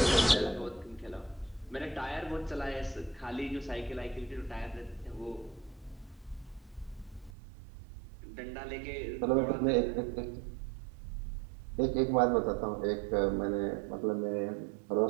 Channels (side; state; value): left; drops out; at 7.3 s